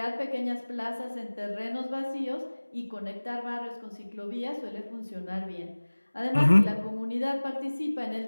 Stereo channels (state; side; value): inverted; both; correlation -1.00